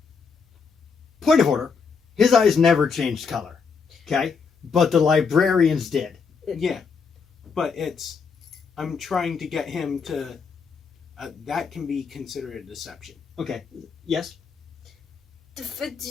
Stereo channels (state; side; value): quieter; right; 5.6 dB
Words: Point of order. His eyes never changed color. Okay? But the librarians did. yeah, but I'm trying to get him to, that can be considered a deception. Okay. Yes?